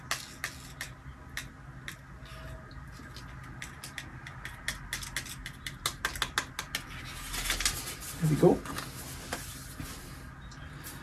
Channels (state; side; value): identical; both; correlation 1.00